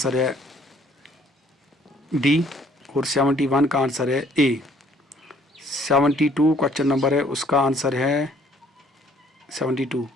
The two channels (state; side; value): normal; both; correlation 0.61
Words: है डी, और 71 का आंसर है ए। 72 क्वेश्चन नंबर है उसका आंसर है